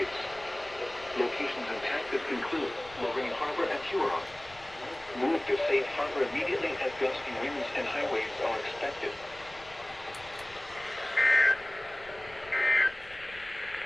Locations intact include Lorraine Harbor and Huron. Move to safe harbor immediately as gusty winds and high waves are expected.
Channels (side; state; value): left; noise; rumble, 22 dB below the sound